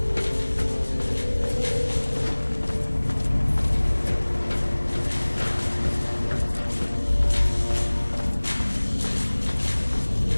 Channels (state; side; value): inverted; both; correlation -1.00